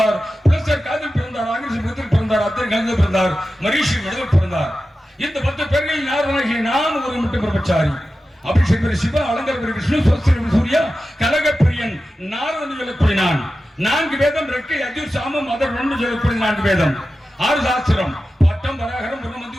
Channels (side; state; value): both; normal; correlation 0.93